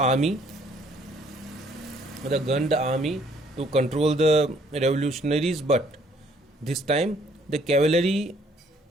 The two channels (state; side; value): normal; both; correlation 0.63